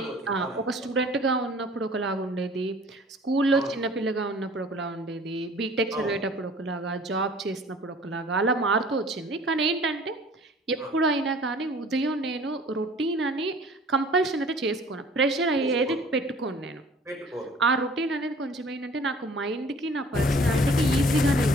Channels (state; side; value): normal; both; correlation 0.50